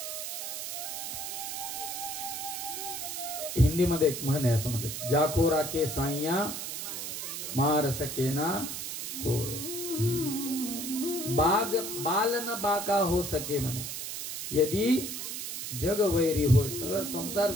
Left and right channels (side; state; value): right; noise; hiss, 5 dB below the sound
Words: हिंदीमध्ये एक म्हण आहे, असं म्हणतात, जाको राखे साईया मार सकेना होय, बाल न बाका हो सके म्हणे. यदि जग वैरी होय, सगळं संसार